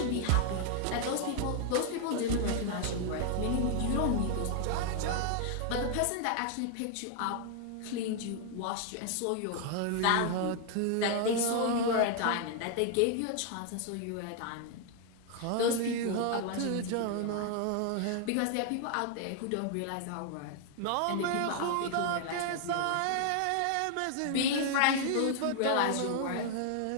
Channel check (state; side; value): different; both; correlation 0.00